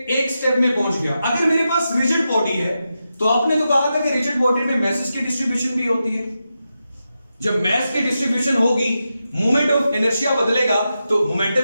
एक स्टेप में पहुंच गया। अगर मेरे पास रिजिड बॉडी है, तो आपने तो कहा था कि रिजिड बॉडी में मैसेज की डिस्ट्रीब्यूशन भी होती है। जब मैस की डिस्ट्रीब्यूशन होगी, मोमेंट ऑफ इनर्शिया बदलेगा, तो मोमेंटम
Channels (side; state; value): both; inverted; correlation -0.89